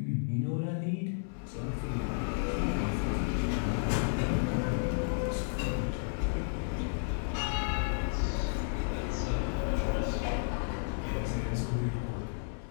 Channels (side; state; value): right; silent; digital silence